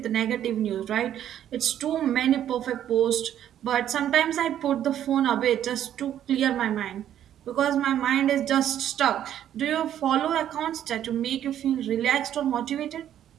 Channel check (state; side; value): quieter; left; 10.8 dB